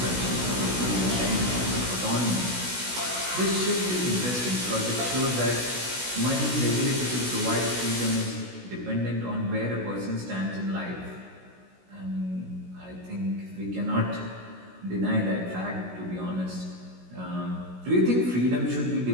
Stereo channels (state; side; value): late; left; 16 ms